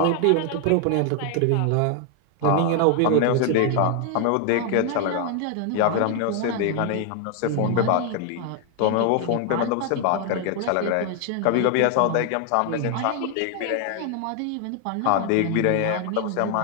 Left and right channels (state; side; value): different; both; correlation 0.00